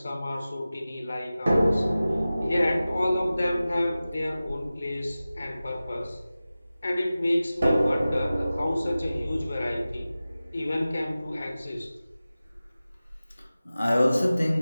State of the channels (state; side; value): inverted; both; correlation -0.96